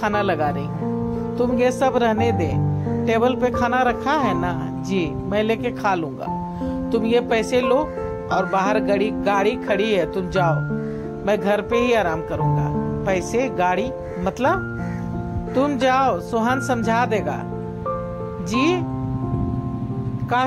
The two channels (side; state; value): both; identical; correlation 1.00